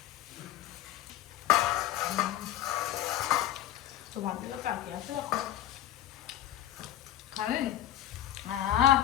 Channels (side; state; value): right; quieter; 12.6 dB